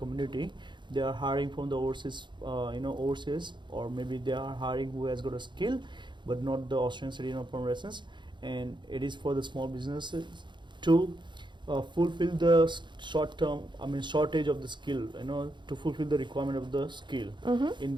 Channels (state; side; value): late; left; 0.23 ms